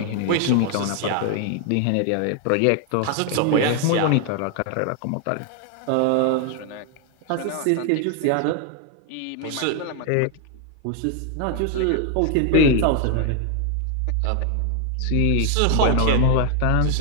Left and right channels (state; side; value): different; both; correlation 0.00